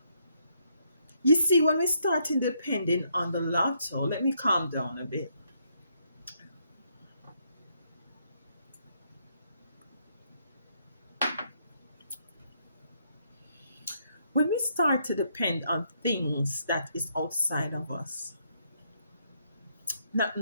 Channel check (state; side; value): inverted; both; correlation -0.74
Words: You see, when we start depending on the lotto, let me calm down a bit. When we start to depend on things that is outside of us, not